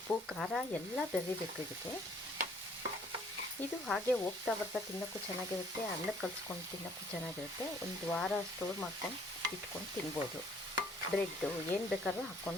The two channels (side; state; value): both; normal; correlation 0.60